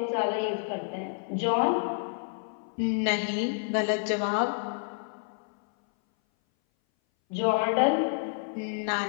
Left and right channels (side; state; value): right; silent; 58 dB below the other